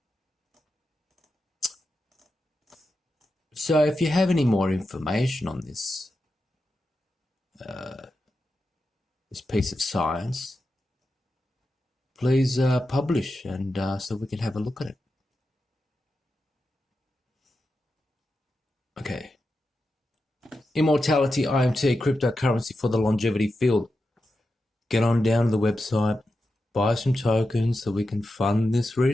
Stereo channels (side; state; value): both; normal; correlation 0.89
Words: So if you have any more information on this piece of science, please publish, and so we can have a look at it. Okay. Immortality IMT, cryptocurrency for the longevity field. Get on down to the website, buy some tokens so we can fund this